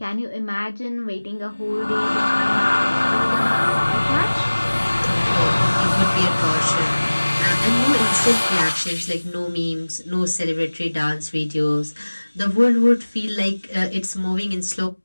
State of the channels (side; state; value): both; inverted; correlation -1.00